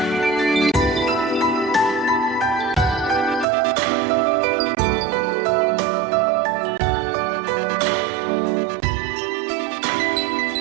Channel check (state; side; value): drops out; left; at 3.5 s